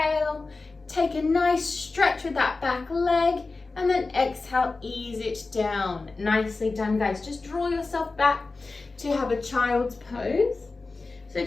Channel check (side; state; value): right; quieter; 3.7 dB